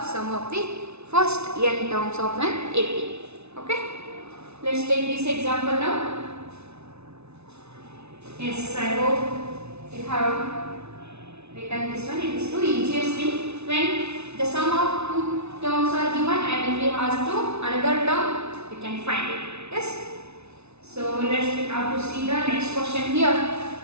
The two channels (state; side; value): late; left; 0.81 ms